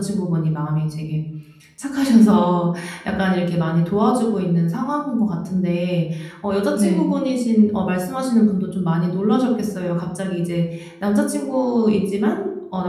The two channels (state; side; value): identical; both; correlation 1.00